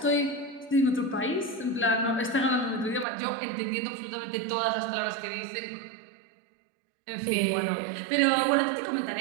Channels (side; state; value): left; drops out; at 3.1 s